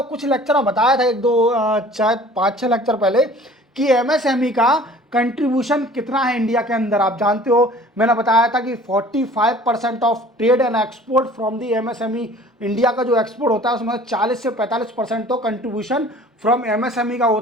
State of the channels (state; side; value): normal; both; correlation 0.48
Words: कुछ लेक्चर में बताया था, 1-2 शायद 5-6 लेक्चर पहले, कि एमएसएमई का कंट्रीब्यूशन कितना है इंडिया के अंदर। आप जानते हो, मैंने बताया था कि 45% of trade and export from the MSME, India का जो एक्सपोर्ट होता है उसमें 40 से 45% तो कंट्रीब्यूशन फ्रॉम एमएसएमई का